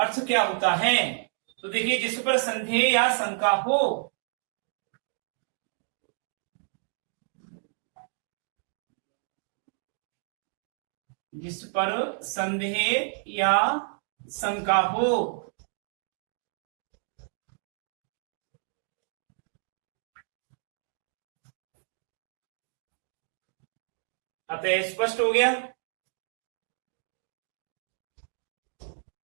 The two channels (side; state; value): left; silent; digital silence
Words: क्या होता है? तो देखिए, जिस पर संदेह या शंका हो, जिस पर संदेह या शंका हो, अतः स्पष्ट हो गया।